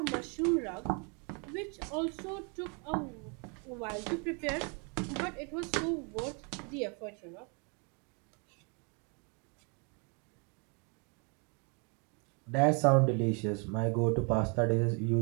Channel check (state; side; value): quieter; left; 35.3 dB